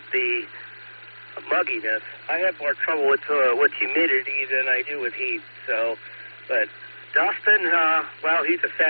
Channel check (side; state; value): both; inverted; correlation -1.00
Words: the mugginess. I have more trouble with humidity than I do with heat. So, but Dustin, well, he's a